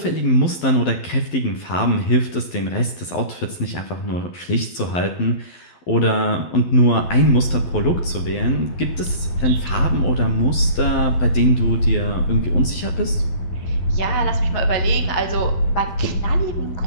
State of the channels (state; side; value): late; right; 12 ms